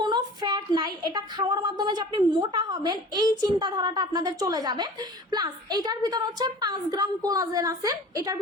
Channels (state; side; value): normal; both; correlation 0.42